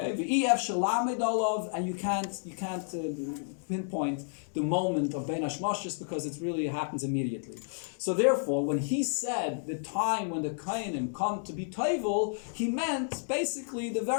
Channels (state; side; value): silent; right; digital silence